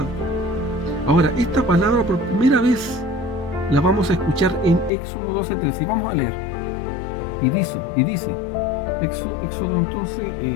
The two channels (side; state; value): right; drops out; at 4.9 s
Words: Ahora, esta palabra por primera vez la vamos a escuchar en Éxodo 12:13 y vamos a leer. Y dice Éxodo entonces